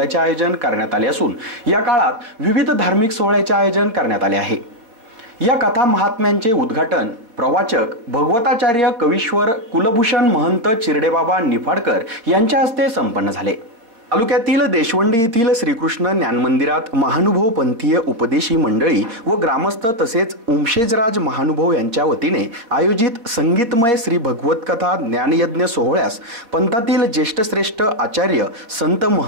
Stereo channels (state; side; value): late; left; 4.3 ms